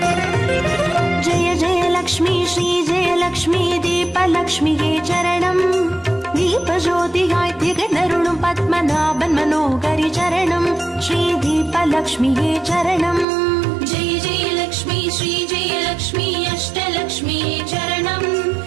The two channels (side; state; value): left; drops out; at 13.2 s